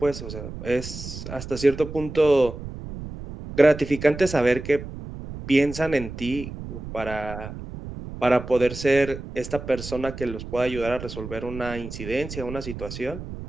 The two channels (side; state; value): right; noise; rumble, 10 dB below the sound